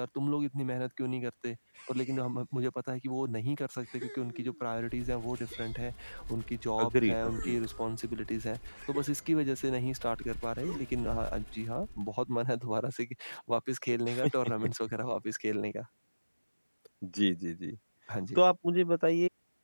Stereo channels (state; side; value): inverted; both; correlation -1.00